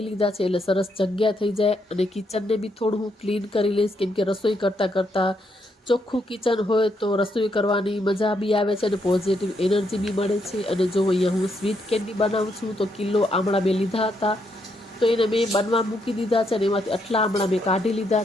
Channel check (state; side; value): normal; both; correlation 0.77